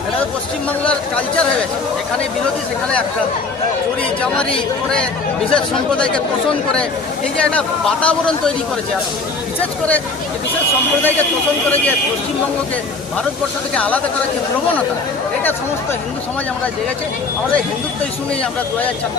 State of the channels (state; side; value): quieter; right; 3.9 dB